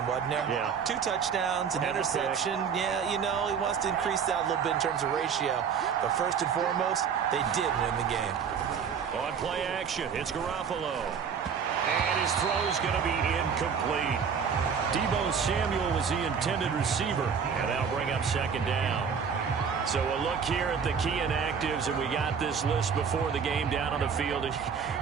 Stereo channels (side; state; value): left; quieter; 6.7 dB